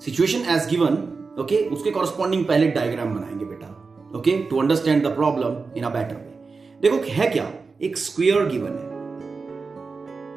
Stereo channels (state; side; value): quieter; left; 4.5 dB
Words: situation as given. Okay, उसके कॉरस्पॉन्डिंग पहले डायग्राम बनाएंगे बेटा. Okay, to understand the problem in a better way. देखो है क्या, एक स्क्वायर गिवन है,